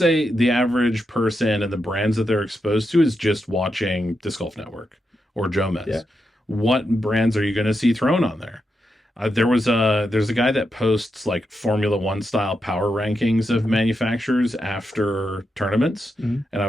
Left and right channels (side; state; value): both; normal; correlation 0.85